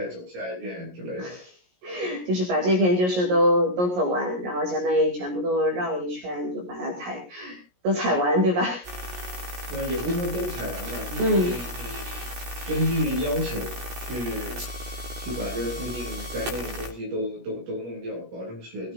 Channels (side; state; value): left; late; 17 ms